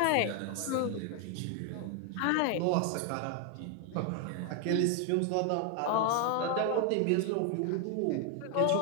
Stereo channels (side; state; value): both; different; correlation 0.00